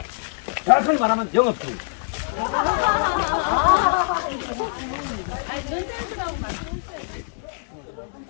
정확하게 말하면 영업중. 연대들하고 말씀해주세요.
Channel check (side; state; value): right; silent; digital silence